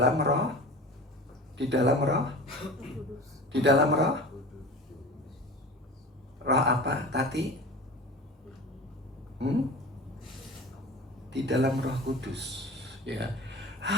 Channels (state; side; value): normal; both; correlation 0.35